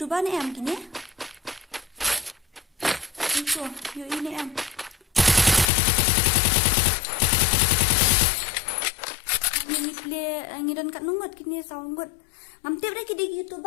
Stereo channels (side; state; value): right; drops out; at 5.7 s